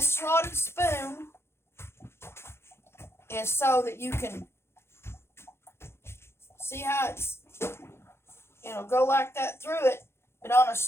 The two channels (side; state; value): right; late; 0.12 ms